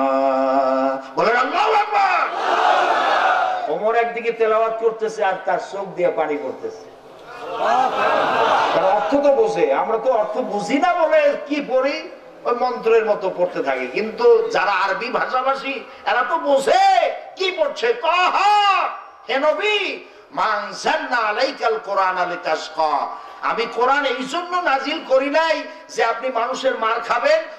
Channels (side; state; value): both; identical; correlation 1.00